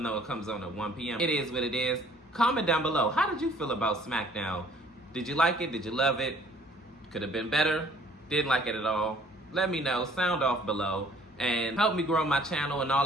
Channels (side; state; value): both; normal; correlation 0.57